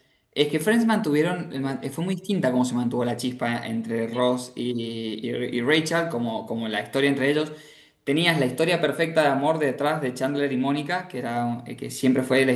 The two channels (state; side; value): identical; both; correlation 1.00